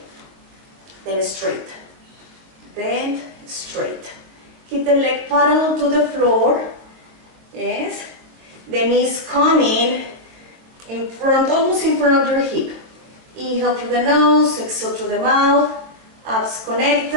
then straight, bend, straight. Keep the leg parallel to the floor, yes. The knees coming in front, almost in front of your hip. Inhale through the nose, exhale through the mouth, abs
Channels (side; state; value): left; late; 23 ms